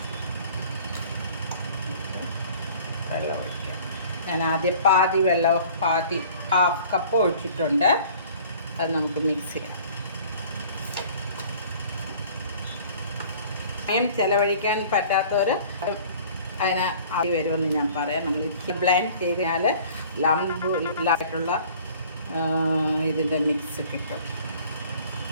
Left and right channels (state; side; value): inverted; both; correlation -0.49